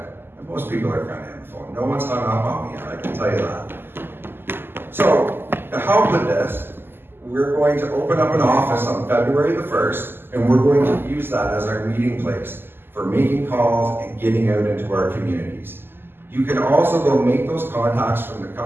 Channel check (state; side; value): late; left; 0.10 ms